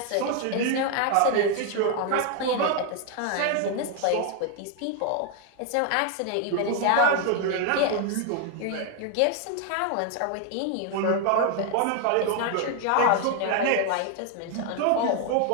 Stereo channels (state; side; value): different; both; correlation 0.00